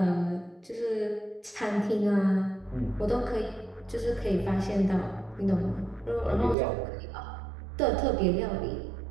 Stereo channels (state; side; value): drops out; left; at 6.6 s